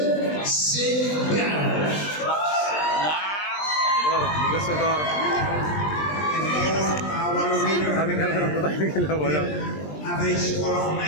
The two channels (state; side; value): late; right; 20 ms